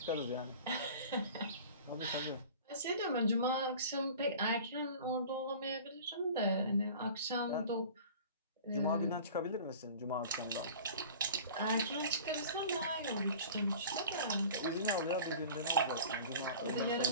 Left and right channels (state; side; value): inverted; both; correlation -0.41